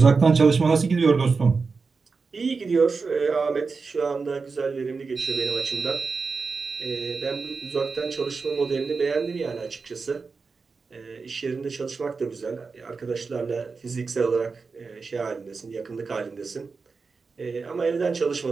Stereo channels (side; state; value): left; quieter; 4.6 dB